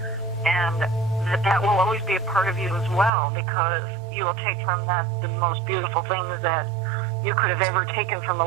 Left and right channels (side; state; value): left; drops out; at 3.1 s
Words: And that will always be a part of you as well, because you will take from that the most beautiful things that you could have ever taken from a